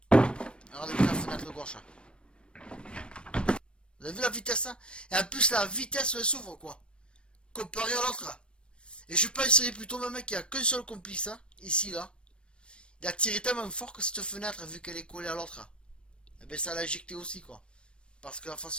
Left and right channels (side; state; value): right; late; 0.057 ms